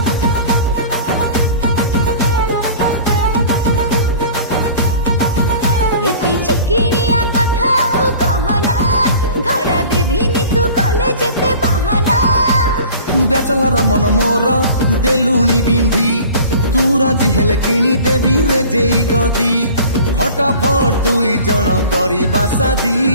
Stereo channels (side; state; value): both; inverted; correlation -0.43